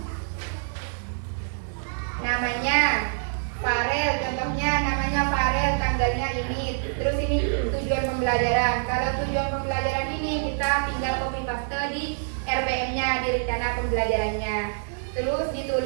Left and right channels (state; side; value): silent; left; digital silence